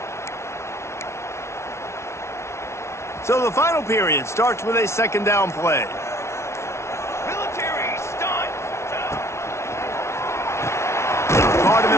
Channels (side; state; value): right; late; 0.13 ms